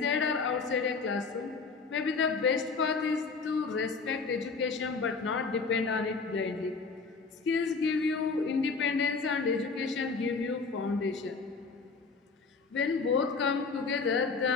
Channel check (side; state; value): right; quieter; 4.6 dB